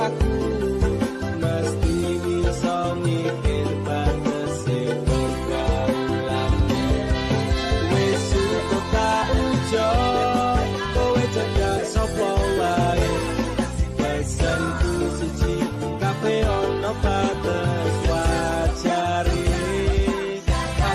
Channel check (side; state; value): both; identical; correlation 1.00